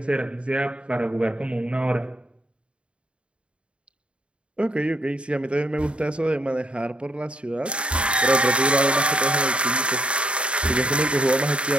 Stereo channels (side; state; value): left; late; 0.057 ms